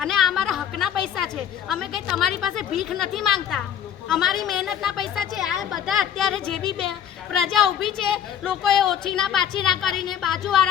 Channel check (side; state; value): right; quieter; 9.3 dB